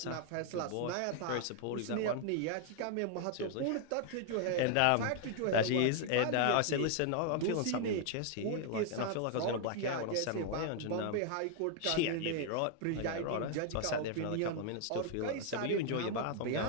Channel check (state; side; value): different; both; correlation 0.00